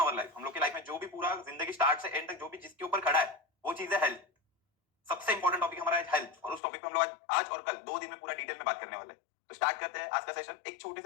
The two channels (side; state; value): right; drops out; at 6.6 s